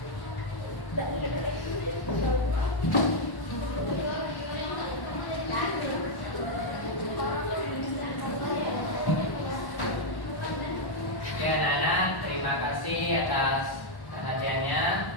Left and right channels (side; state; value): right; late; 1.1 ms